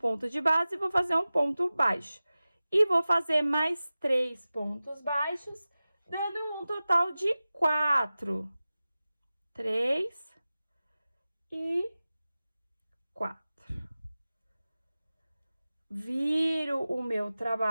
de base, vou fazer um ponto baixo. E vou fazer mais 3 pontos baixos, dando um total de 4. 3 e 4. Viro o meu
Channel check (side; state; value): both; inverted; correlation -0.96